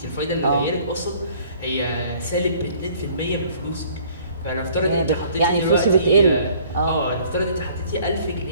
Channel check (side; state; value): both; inverted; correlation -0.56